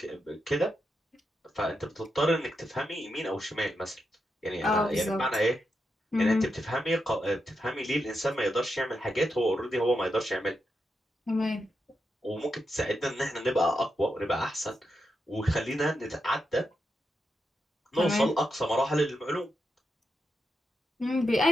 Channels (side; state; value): both; normal; correlation 0.85